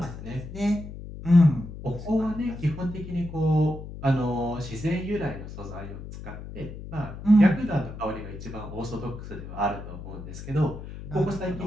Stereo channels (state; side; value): noise; left; hum, 11 dB below the sound